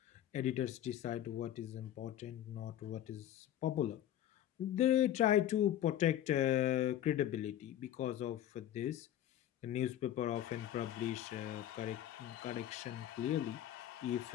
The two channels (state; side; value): quieter; right; 11.8 dB